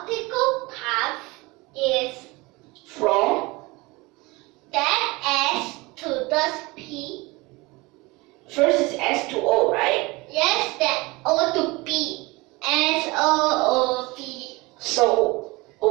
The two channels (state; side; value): quieter; left; 23.6 dB